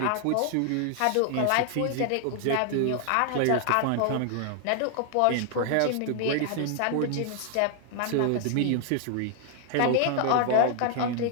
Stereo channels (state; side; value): different; both; correlation 0.00